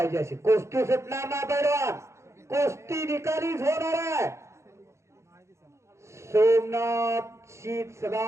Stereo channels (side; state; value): left; late; 0.14 ms